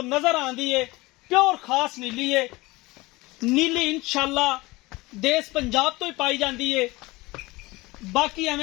नजर आंदी है। प्योर खास नीली है। नीली इंशाअल्लाह देश पंजाब तो ही पाई जाती है। बाकी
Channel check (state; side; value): quieter; right; 21.6 dB